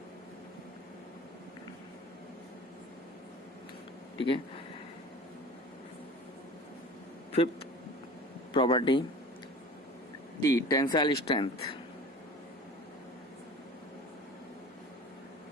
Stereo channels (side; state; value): both; normal; correlation 0.39